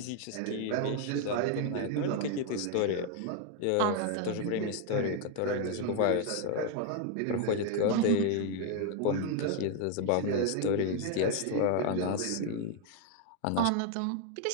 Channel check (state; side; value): different; both; correlation 0.00